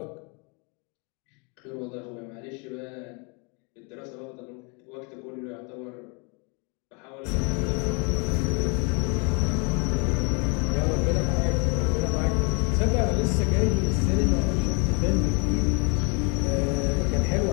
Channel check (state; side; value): quieter; right; 32.9 dB